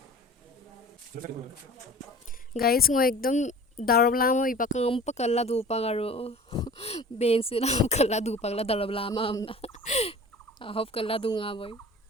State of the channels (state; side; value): normal; both; correlation 0.43